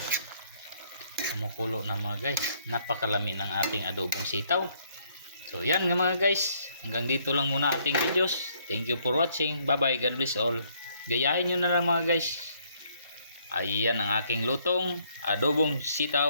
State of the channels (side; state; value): both; inverted; correlation -0.67